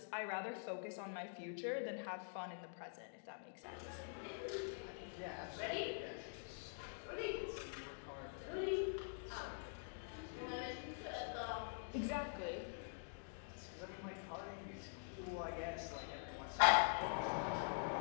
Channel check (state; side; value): silent; right; digital silence